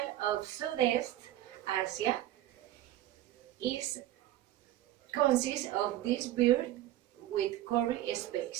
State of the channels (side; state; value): left; quieter; 14.0 dB